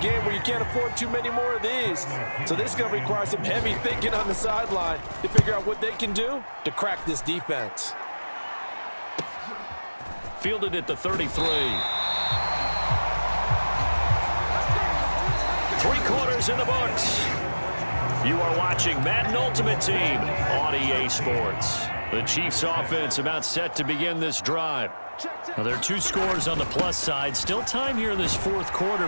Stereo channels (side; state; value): both; inverted; correlation -1.00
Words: where you can't afford too many more of these. So this is going to require some heavy thinking on the sideline to figure out what they can do to crack this defense. Fielded at the 33. 3 quarters in the books. You are watching Madden Ultimate Team on EA Sports. The Chiefs offense about set to begin this drive. Now, there are 2 scores on the plus side. Still time here in this 4th quarter,